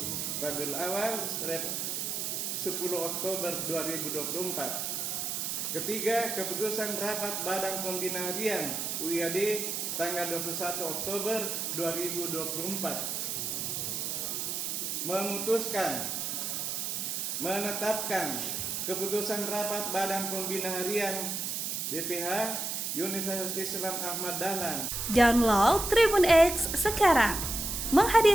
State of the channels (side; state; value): right; noise; hiss, 2 dB below the sound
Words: Rabiul Awal 10 Oktober 2024. Ketiga, keputusan rapat Badan Pembina Harian UIAD tanggal 21 Oktober 2024 memutuskan menetapkan keputusan rapat Badan Pembina Harian BPH Universitas Islam Ahmad Dahlan. Download Tribun X sekarang,